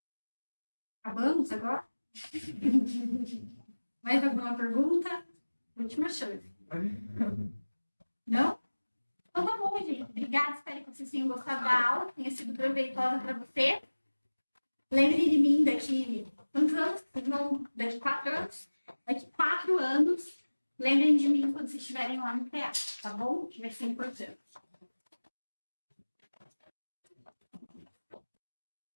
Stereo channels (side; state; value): both; inverted; correlation -1.00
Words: Acabamos agora? Mais alguma pergunta? Última chance. Não? Então tá bom, gente. Obrigada, espero que vocês tenham gostado da aula, que tenha sido proveitosa para você. Lembre de mim daqui quantos anos? Não, daqui 4 anos? Daqui 4 anos, lembrem de mim quando vocês estiverem lá no teatro, tá bom? Que vai ser importante.